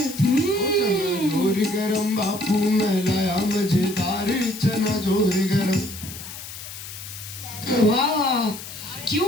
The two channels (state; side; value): noise; left; hiss, 12 dB below the sound